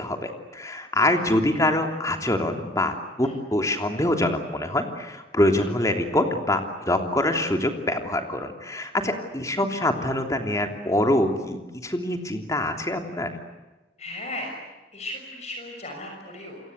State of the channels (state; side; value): normal; both; correlation 0.53